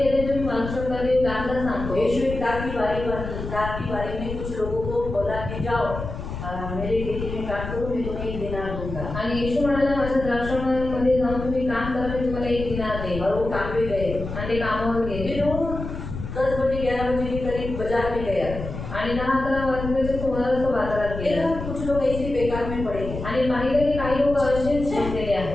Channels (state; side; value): noise; left; rumble, 7 dB below the sound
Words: तुम्ही वाचू शकता. ते दाखला सांगतो. यीशु एक दाख की बारी में कुछ लोगों को बोला कि जाओ मेरे खेती में काम करो, मैं तुम्हें 1 दिनार दूंगा। आणि येशू म्हणाला माझ्या द्राक्षामध्ये जाऊन तुम्ही काम करा, मी तुम्हाला 1 दिनार देईन. और वो काम पे गए। आणि ते कामावर गेले. फिर वो 10 बजे 11 बजे के करीब बाजार में गया। आणि 10-11 वाजल्याच्या सुमारास तो बाजारात गेला. देखा कुछ लोग ऐसे ही बेकार में पड़े हैं। आणि पाहिलं की काही लोक असेच बसलेले